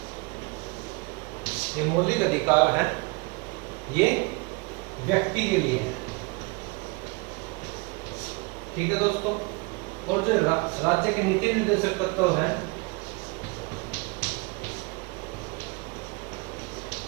ये मौलिक अधिकार हैं, ये व्यक्ति के लिए है। ठीक है दोस्तों। और जो राज्य के नीति निर्देशक तत्व हैं,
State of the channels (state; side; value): quieter; left; 27.8 dB